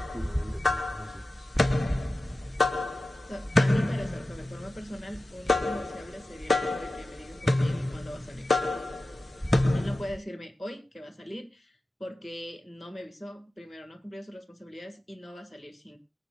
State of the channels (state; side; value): normal; both; correlation 0.94